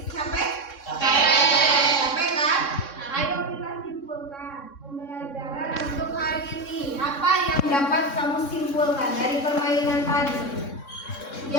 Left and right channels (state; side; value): late; right; 3.6 ms